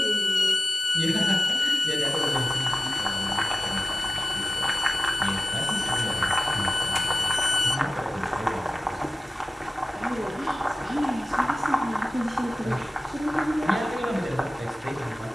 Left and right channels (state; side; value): normal; both; correlation 0.95